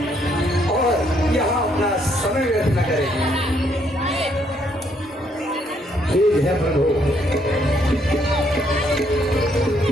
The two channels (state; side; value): normal; both; correlation 0.70